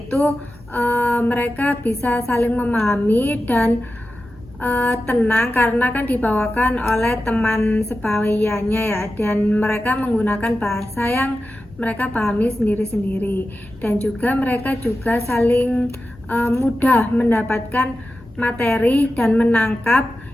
mereka bisa saling memahami dan tenang karena kan dibawakan oleh teman sebawayannya ya, dan mereka menggunakan bahasa yang mereka pahami sendiri-sendiri, dan juga mereka juga saling mudah mendapatkan materi dan menangkap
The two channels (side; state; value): both; normal; correlation 0.92